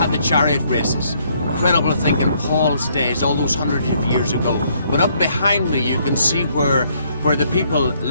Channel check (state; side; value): inverted; both; correlation -0.68